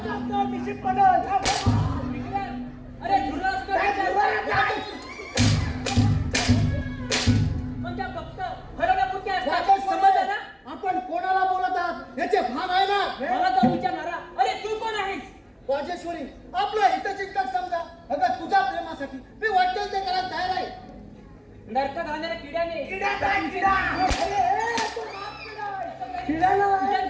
मिसिक पडल. अरे धुरळा पण त्या फक्त हरवण्यापुरती असतात. समजलं ना? आपण कोणाला बोलत आहात याचे भान आहे ना? मला तो विचारणारा अरे तू कोण आहेस? राजेश्वरी, आपलं हितचिंतक समजा. अगं तुझ्या प्रेमासाठी मी वाटेल ते करायला तयार आहे. नरकात घालणाऱ्या किड्याने किडा काय किडा? तुझ्यात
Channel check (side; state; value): both; identical; correlation 1.00